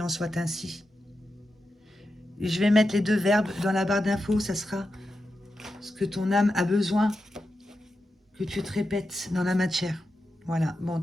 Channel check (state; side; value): normal; both; correlation 0.89